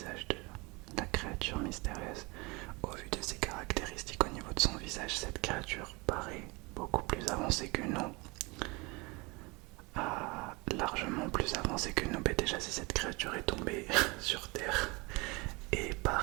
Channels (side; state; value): left; quieter; 26.3 dB